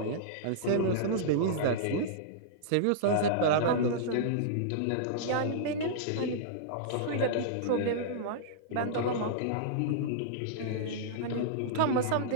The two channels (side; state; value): both; different; correlation -0.02